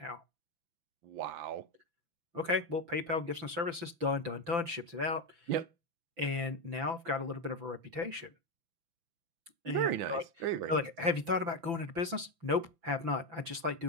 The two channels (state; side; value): late; left; 5.9 ms